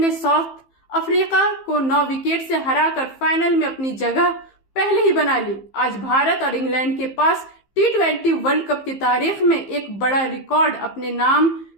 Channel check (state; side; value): late; right; 15 ms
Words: साउथ अफ्रीका को 9 विकेट से हराकर फाइनल में अपनी जगह पहले ही बना ली। आज भारत और इंग्लैंड के पास T20 वर्ल्ड कप की तारीख में एक बड़ा रिकॉर्ड अपने नाम